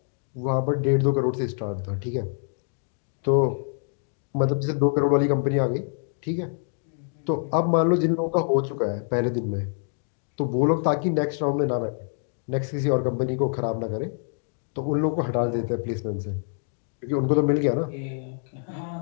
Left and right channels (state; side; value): silent; right; digital silence